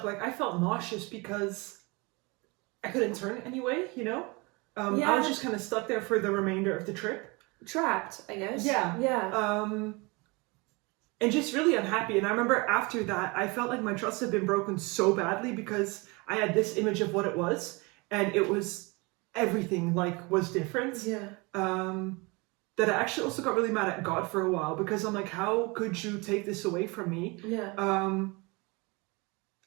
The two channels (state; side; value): quieter; left; 27.1 dB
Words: Like I felt nauseous because I couldn't turn anyway, you know? I was just kind of stuck there for the remainder of the trip. Trapped, I guess. Yeah. And just really unhappy. And I remember after that, I felt like my trust had been broken so badly because I had this image of what it was. And it was everything, like, was different. Yeah. That I actually also got really mad at God for a while because I'm like, how could you take this away from me? Yeah.